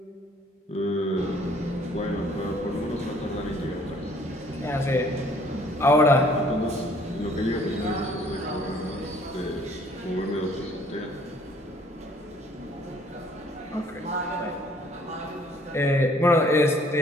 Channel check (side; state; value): both; normal; correlation 0.59